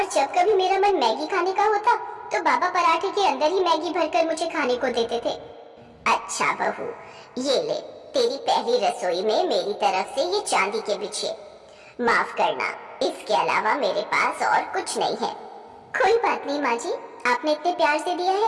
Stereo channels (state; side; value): identical; both; correlation 1.00